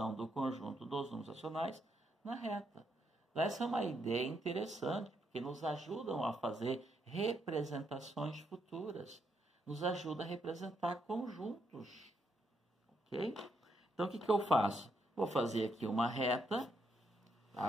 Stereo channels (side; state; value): both; normal; correlation 0.77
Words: do conjunto dos números racionais na reta. Essa é uma ideia interessante, porque nos ajudam a fazer representações futuras. Nos ajuda a representar conjuntos. Ok? Então, o que eu faço? Vou fazer aqui uma reta. Tá?